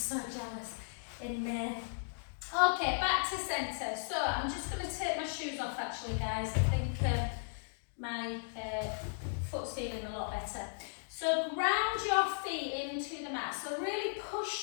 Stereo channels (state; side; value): silent; right; digital silence